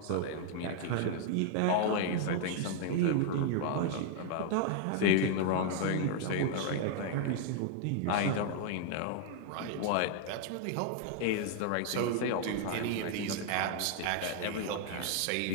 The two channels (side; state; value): both; different; correlation 0.00